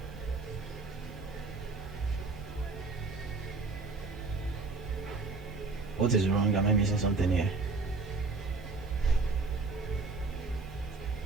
What is wrong? Am I missing something here?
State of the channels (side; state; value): left; quieter; 3.8 dB